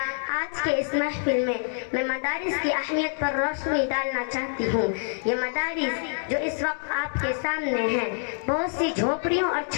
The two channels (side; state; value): right; silent; 61 dB below the other